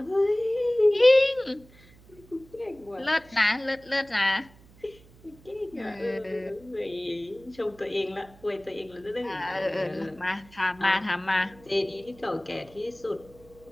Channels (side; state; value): right; noise; hum, 25 dB below the sound